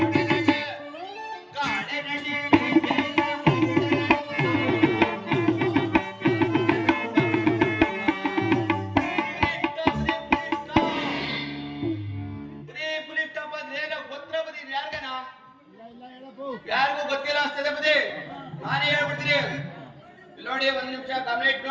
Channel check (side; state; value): both; identical; correlation 1.00